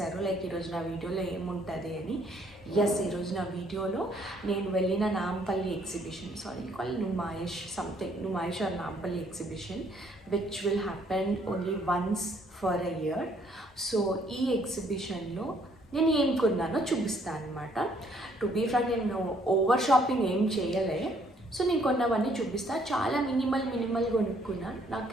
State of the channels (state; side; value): normal; both; correlation 0.65